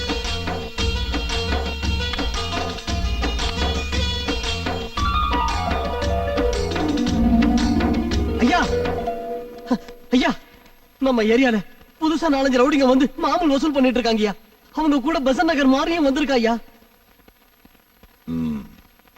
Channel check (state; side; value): identical; both; correlation 1.00